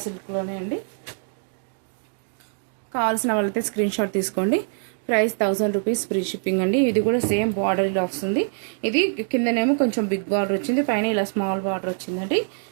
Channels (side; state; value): left; silent; 63 dB below the other